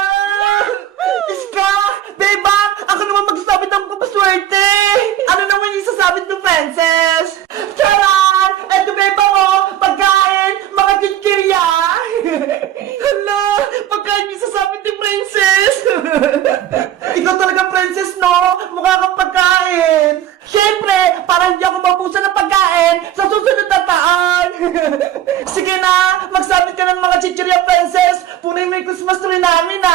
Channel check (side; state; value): left; quieter; 11.8 dB